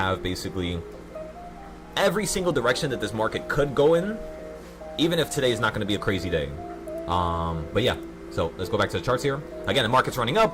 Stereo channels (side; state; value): both; identical; correlation 1.00